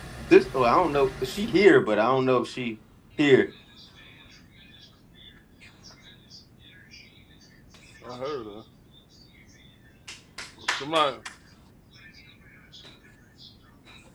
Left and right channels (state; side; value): identical; both; correlation 1.00